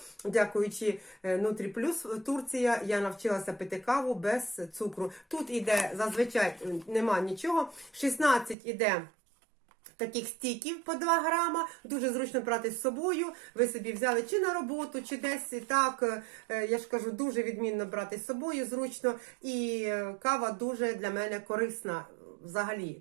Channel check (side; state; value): left; drops out; at 8.6 s